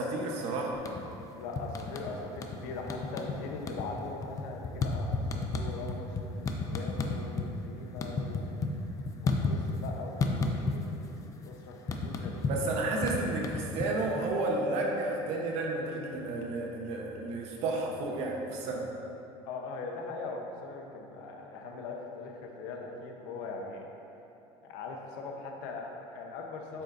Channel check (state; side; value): normal; both; correlation 0.43